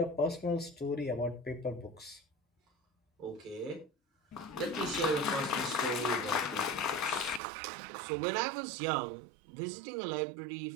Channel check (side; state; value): left; drops out; at 7.4 s